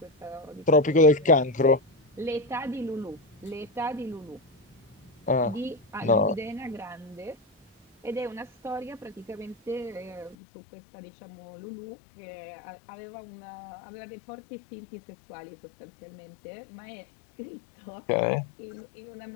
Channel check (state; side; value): drops out; right; at 10.4 s